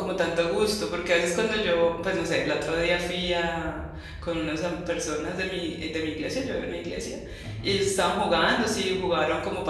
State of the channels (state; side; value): identical; both; correlation 1.00